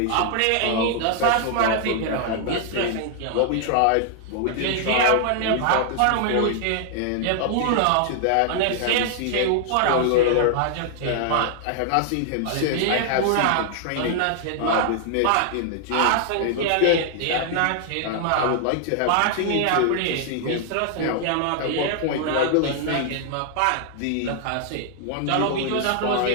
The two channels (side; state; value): both; different; correlation 0.00